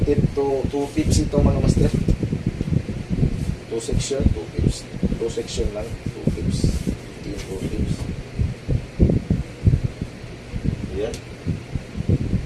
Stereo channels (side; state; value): both; identical; correlation 1.00